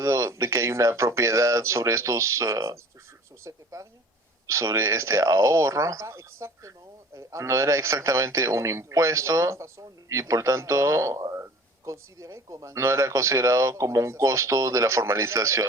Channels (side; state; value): both; normal; correlation 0.46